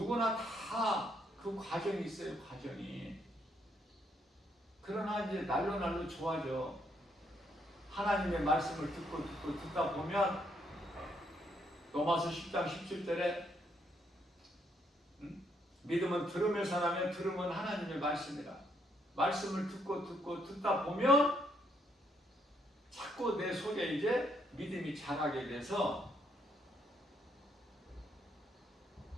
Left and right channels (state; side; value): normal; both; correlation 0.73